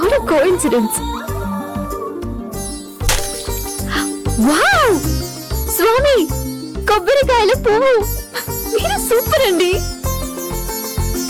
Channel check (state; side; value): identical; both; correlation 1.00